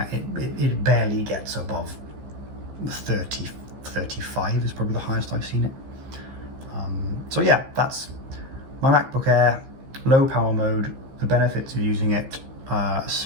it barely gets above 30, 35 is probably the highest I've seen it. So yeah, that's my MacBook Air, low power mode, the benefits of using it.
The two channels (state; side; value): late; left; 15 ms